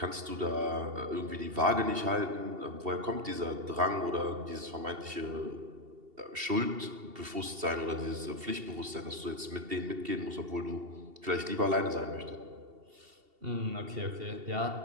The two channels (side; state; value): left; late; 2.7 ms